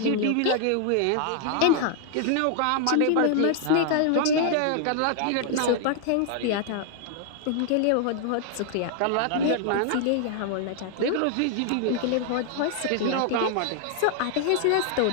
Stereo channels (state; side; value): different; both; correlation 0.00